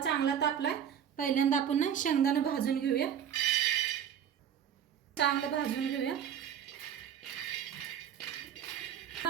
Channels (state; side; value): quieter; left; 9.0 dB